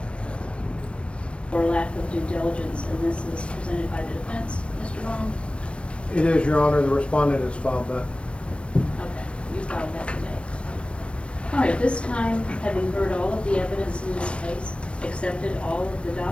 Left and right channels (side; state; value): right; late; 0.060 ms